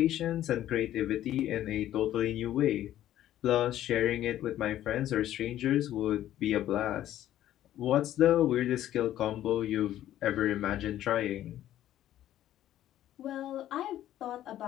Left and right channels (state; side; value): quieter; right; 12.6 dB